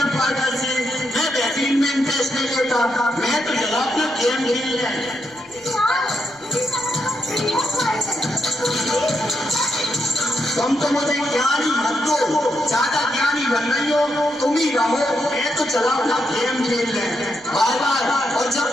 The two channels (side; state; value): right; noise; rumble, 29 dB below the sound